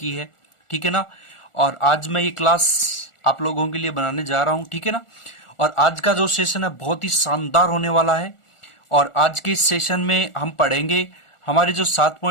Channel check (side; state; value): right; late; 1.4 ms